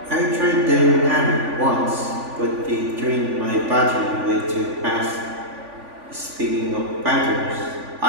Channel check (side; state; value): left; late; 3.5 ms